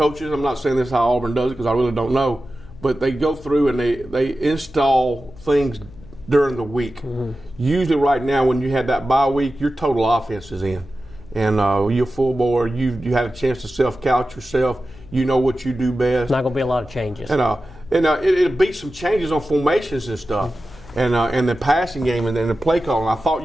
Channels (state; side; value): noise; left; hum, 20 dB below the sound